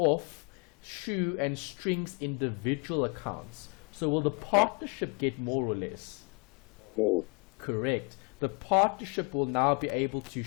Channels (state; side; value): quieter; right; 34.6 dB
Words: shoe and strings individual accounts. So will the partnership get more or less? More. Correct. The partnership will now be able to